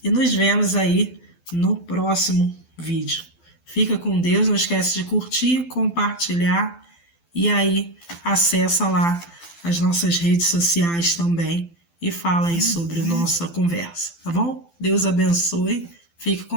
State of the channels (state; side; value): late; right; 12 ms